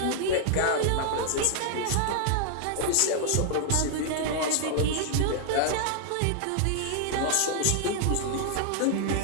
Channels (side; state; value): both; different; correlation -0.01